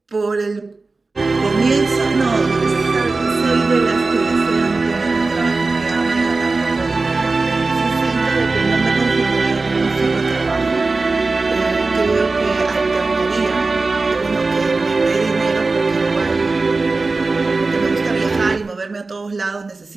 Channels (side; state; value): left; quieter; 3.7 dB